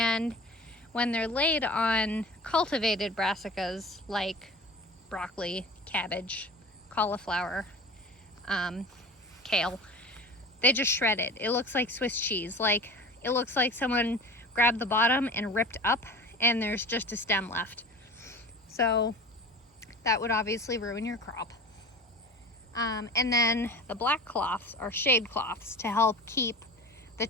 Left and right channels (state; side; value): normal; both; correlation 0.37